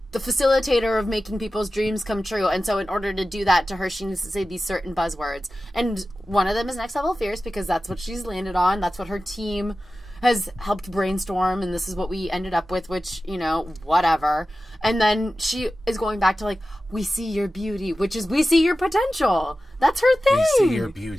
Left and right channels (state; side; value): normal; both; correlation 0.95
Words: the facilitator of making people's dreams come true. And so in order to do that to her, she needs to say these certain buzzwords. And one of them is next level fierce because that's what she's landed on. That's what her team has helped brainstorm, and this is what we ended up with, which, you know, whatever. And then she is going back to, like, we see your beauty, which is we see your potential. That's her thing. We see your